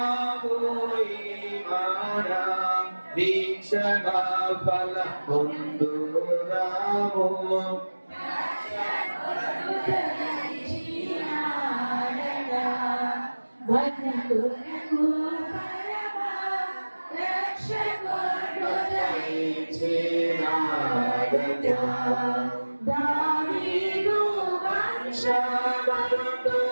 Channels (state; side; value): inverted; both; correlation -1.00